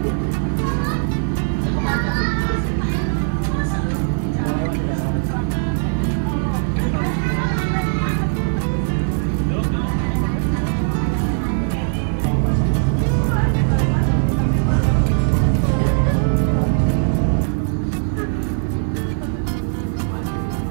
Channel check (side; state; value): left; silent; 56 dB below the other